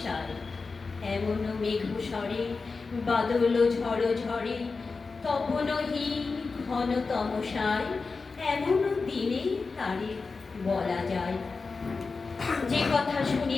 এমন মেঘ স্বরে বাদল ঝড় ঝড়ে, তপনহীন ঘন তমসায়, এমন দিনে তারে বলা যায়। যে কথা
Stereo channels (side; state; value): right; quieter; 4.3 dB